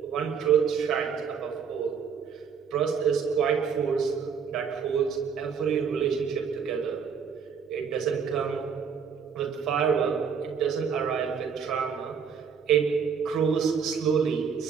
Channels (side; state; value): left; quieter; 6.7 dB